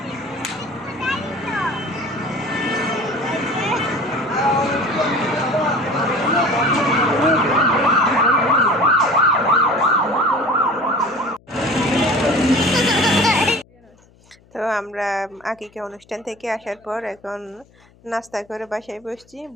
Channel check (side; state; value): left; noise; hum, 30 dB below the sound